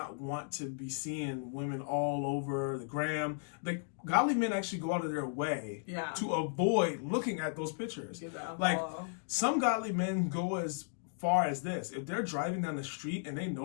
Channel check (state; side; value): silent; right; digital silence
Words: want to be seeing women all over the gram. Godly men actually go out of their way to avoid looking at those pictures. Some godly men go as far as this. If they're driving down the street and they